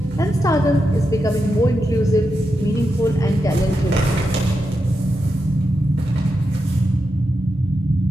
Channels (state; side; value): normal; both; correlation 0.87